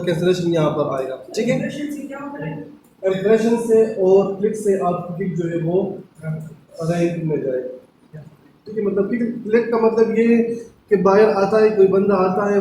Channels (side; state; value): both; identical; correlation 1.00